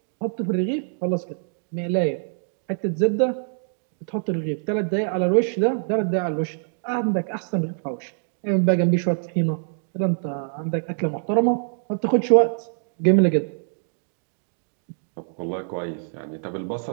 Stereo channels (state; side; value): silent; left; digital silence